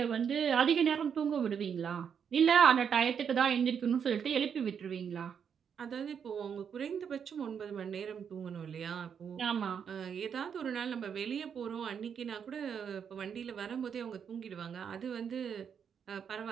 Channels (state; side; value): quieter; left; 7.4 dB